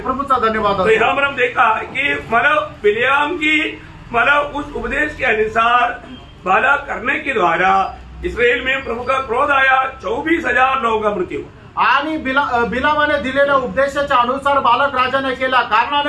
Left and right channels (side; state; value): both; identical; correlation 1.00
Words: धन्यवाद। तो यहाँ पर हम देखा कि मतलब बिलियाम की मतलब उस उपदेश के अनुसार बाला करने के द्वारा इसराइल में प्रभु का क्रोध आया, 24,000 लोगों का मृत्यु। आणि बिलामाने दिलेल्या उपदेशाच्या अनुसार बालक राजाने केल्या